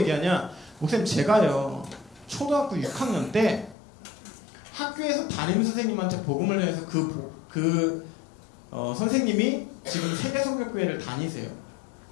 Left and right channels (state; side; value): drops out; right; at 3.8 s